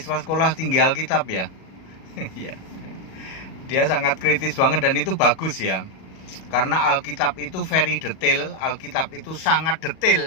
sekolah tinggi Alkitab ya. Ya. Dia sangat kritis banget dan itu bagus ya. Karena Alkitab itu very detail, Alkitab itu sangat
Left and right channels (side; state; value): right; late; 37 ms